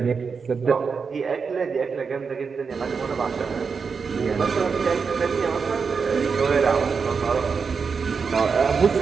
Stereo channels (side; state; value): left; quieter; 5.5 dB